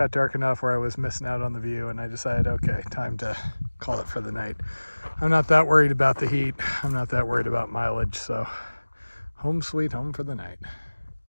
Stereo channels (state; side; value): inverted; both; correlation -1.00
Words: dark enough where I was missing out on the view, and I decided, okay, time to call it for the night. I'm not that worried about the heat. I'm not that worried about mileage, so home sweet home for the night.